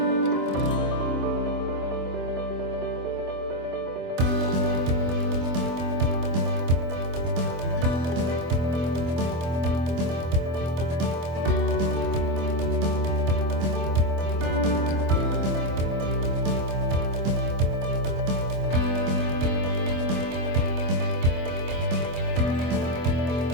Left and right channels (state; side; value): late; left; 25 ms